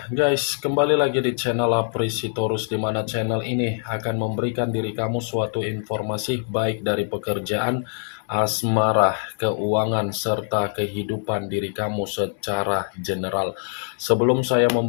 guys, kembali lagi di channel Apresitorus, di mana channel ini akan memberikan diri kamu suatu informasi baik dari pekerjaan, asmara, keuangan, serta kehidupan diri kamu secara general. Sebelum saya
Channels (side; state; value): right; silent; digital silence